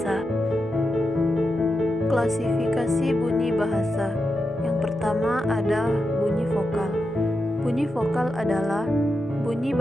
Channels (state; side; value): normal; both; correlation 0.87